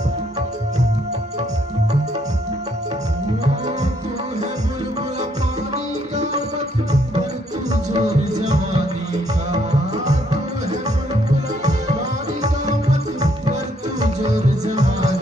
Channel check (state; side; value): normal; both; correlation 0.70